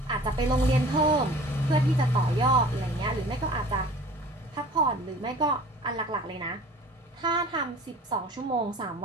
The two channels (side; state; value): both; normal; correlation 0.45